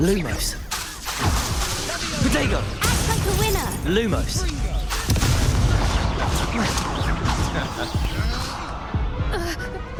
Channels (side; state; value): both; identical; correlation 1.00